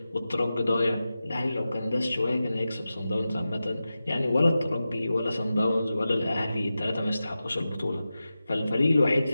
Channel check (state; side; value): inverted; both; correlation -0.93